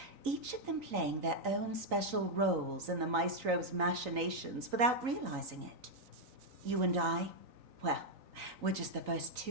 each of them playing their own special roles in the maestro's machinations without realizing it. You and I, well, we're just the first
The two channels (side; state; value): left; late; 3.9 ms